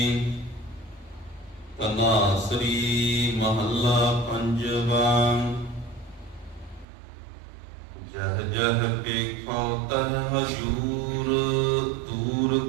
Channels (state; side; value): drops out; left; at 6.9 s